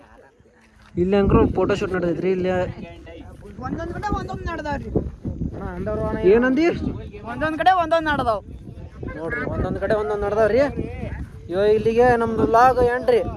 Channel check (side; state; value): both; identical; correlation 1.00